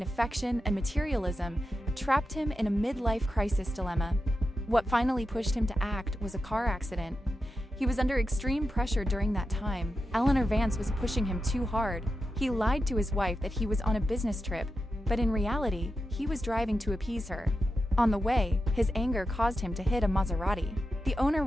affection and materialism trapped him in a midlife crisis dilemma. What finally pushed him to act was a car accident. He was under extreme pressure during that time. Eleanor Vance was pushing him too hard. He lied to his wife that he was on a business trip, but in reality, he was driving to appease her. On the way, his anger caused him to hit a Maserati. The owner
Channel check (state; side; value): normal; both; correlation 0.89